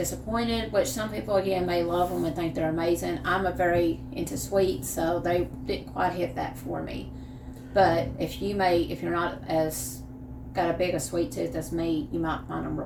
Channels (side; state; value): both; identical; correlation 1.00